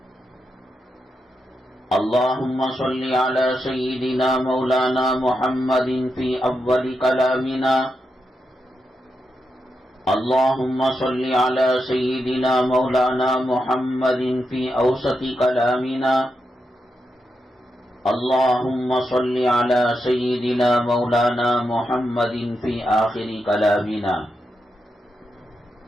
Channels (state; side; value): normal; both; correlation 0.86